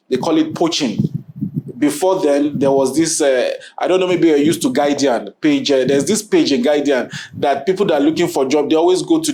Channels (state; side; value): identical; both; correlation 1.00